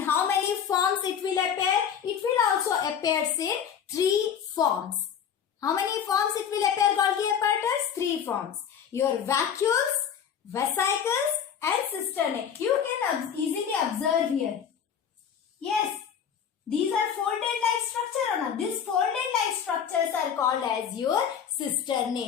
how many forms it will appear? It will also appear in three forms. How many forms it will appear Golgi apparatus? Three forms. Your vacuoles, vesicles and cisternae. You can easily observe here. Yes, these are folded like structure or not? These folded like structures are called as your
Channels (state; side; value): quieter; right; 8.0 dB